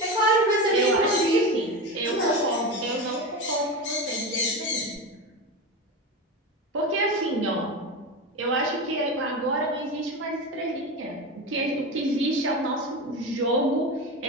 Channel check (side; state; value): both; normal; correlation 0.22